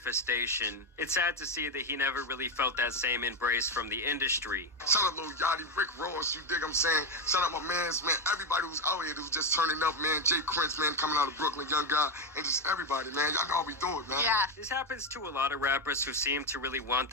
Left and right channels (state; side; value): normal; both; correlation 0.09